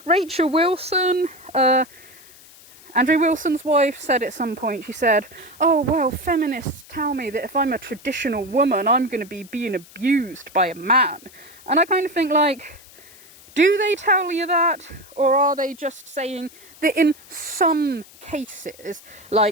Rachel Wilson, Andrew Wilson's wife, said at some point, she said, oh, well, feminists tell me that if I'm a traditional woman, I'm going to be being abused by a man. And I kind of think, like, do they tell you that? Or are they just saying that in some cases,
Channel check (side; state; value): left; noise; hiss, 23 dB below the sound